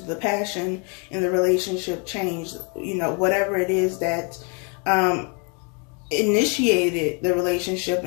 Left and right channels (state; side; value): quieter; right; 35.5 dB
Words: The passion in the relationship changed. Whatever it is that initiated the relationship